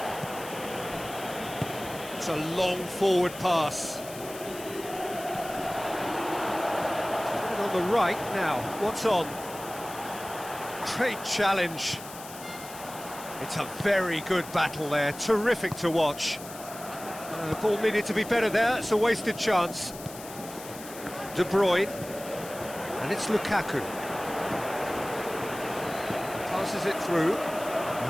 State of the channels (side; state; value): left; noise; hiss, 14 dB below the sound